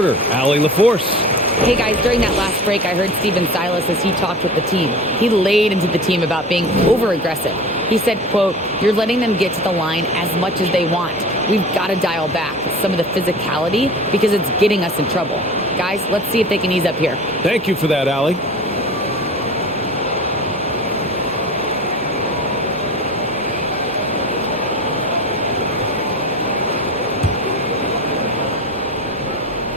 Allie LaForce. Hey guys, during that last break, I heard Stephen Silas as he talked with the team. He laid into the team about being over-aggressive. He said, quote, "You're letting them get to the line as much as they want. We've got to dial back some of the physicality because it's getting us in trouble. Guys, let's see if they can ease up here." Thank you for that, Allie.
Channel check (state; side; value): normal; both; correlation 0.35